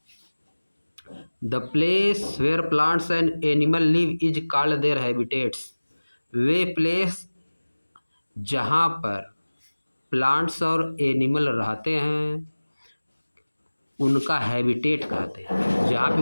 the place where plants and animal live is called their habitats. वे प्लेस जहाँ पर प्लांट्स और एनिमल रहते हैं उनका हैबिटेट कहते हैं। जहाँ पे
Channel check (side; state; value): both; inverted; correlation -1.00